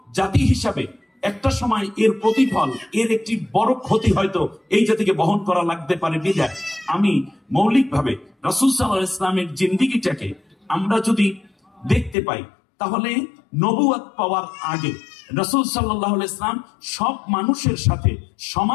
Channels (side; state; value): right; drops out; at 12.2 s